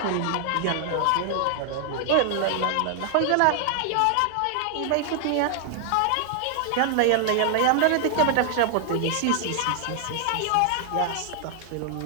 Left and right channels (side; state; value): both; different; correlation 0.00